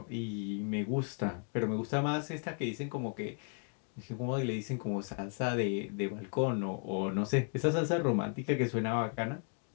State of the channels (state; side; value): quieter; right; 39.4 dB